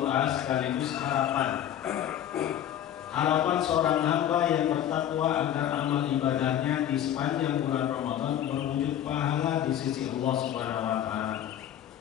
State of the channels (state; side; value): quieter; right; 10.7 dB